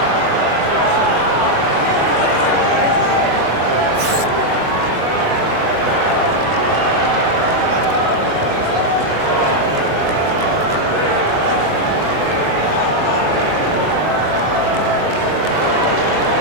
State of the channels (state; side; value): late; left; 23 ms